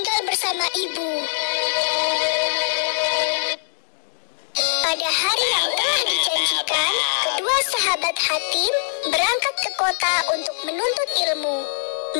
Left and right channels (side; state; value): right; silent; digital silence